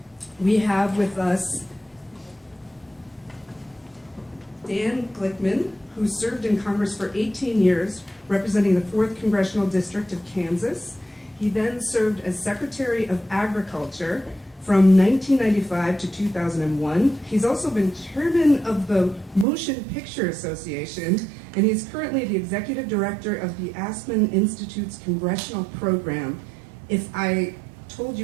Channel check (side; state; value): left; drops out; at 19.5 s